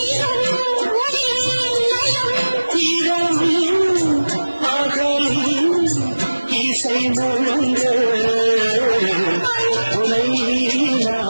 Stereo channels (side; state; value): both; inverted; correlation -1.00